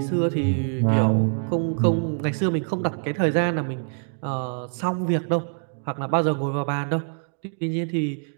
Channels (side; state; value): left; silent; 62 dB below the other